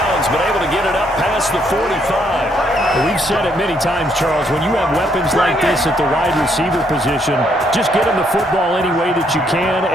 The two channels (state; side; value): normal; both; correlation 0.72